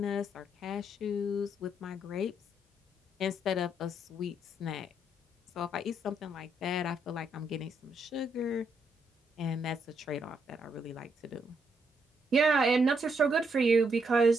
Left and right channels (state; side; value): normal; both; correlation 0.76